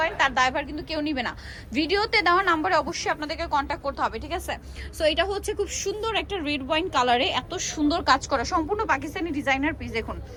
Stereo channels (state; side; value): identical; both; correlation 1.00